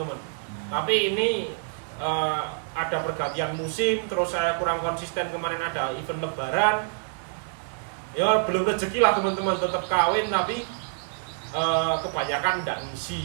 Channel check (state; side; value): silent; left; 60 dB below the other